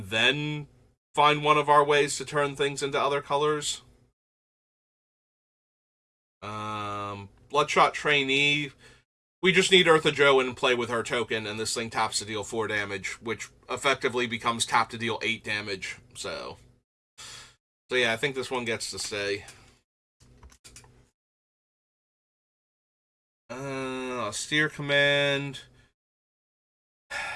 then find one of our ways to turn things into other colors. Bloodshot Trainee. We just need Ertha Joe and play with her token, and this thing taps to deal 4 damage, which effectively becomes tap to deal 8 damage. So yeah, I think this one gets to stay. Austere Command.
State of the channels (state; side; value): identical; both; correlation 1.00